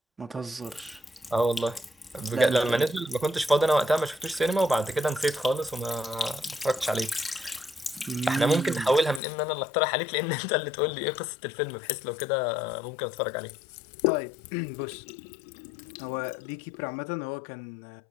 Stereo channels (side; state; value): right; drops out; at 9.2 s